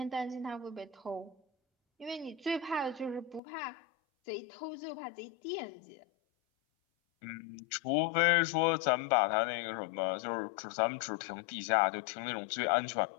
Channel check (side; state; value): right; drops out; at 3.4 s